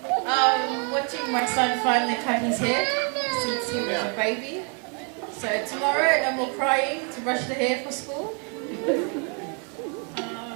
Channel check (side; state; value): left; quieter; 37.9 dB